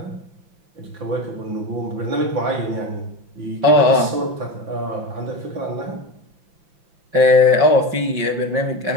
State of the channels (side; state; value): left; late; 5.8 ms